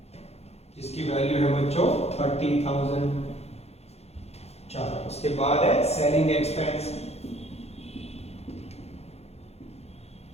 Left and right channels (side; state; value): right; late; 0.30 ms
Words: जिसकी वैल्यू है बच्चों 30,000। चलो उसके बाद है सेलिंग एक्सपेंस